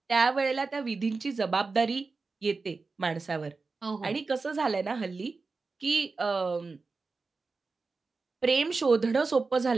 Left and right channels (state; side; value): quieter; left; 4.1 dB